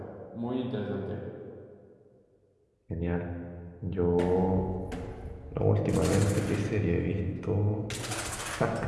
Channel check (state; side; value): identical; both; correlation 1.00